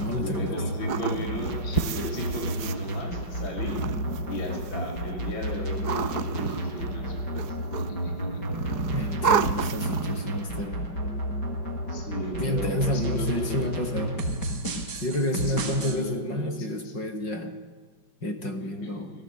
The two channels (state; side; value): late; right; 4.8 ms